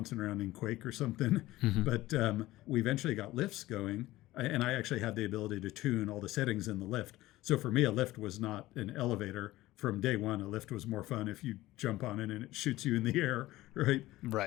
around in Quake or something, but we eventually got lifts going, and I actually had the ability to tune all the settings in the lift. So for me, a lift was not an elevator. From day one, a lift was more fun if you jump on it and it shoots you in the air, right?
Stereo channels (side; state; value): right; quieter; 17.2 dB